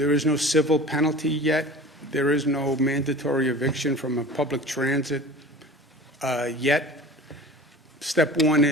is no civil penalty yet. There is no mandatory eviction from a public transit yet. Step one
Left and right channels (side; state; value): both; normal; correlation 0.39